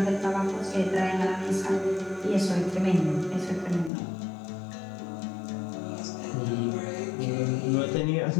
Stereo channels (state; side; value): drops out; right; at 3.9 s